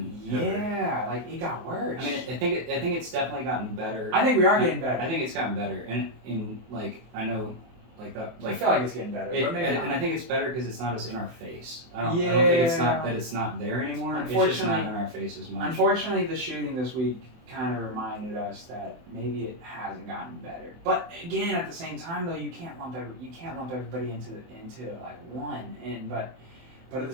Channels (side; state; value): left; late; 24 ms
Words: ever. It got worse. I mean, I think it's definitely gotten better. I think we are getting better. I think it's gotten better, and I know that I feel like it's getting better, but maybe not. And I think it's better because it's not as in our face. I don't think it's not that it's not there anymore. It's just not in our face as much. Unfortunately, the shooting this week kind of reminded us that maybe it hasn't gotten better. But again, at the same time, though, you can't lump everybody into one. But at the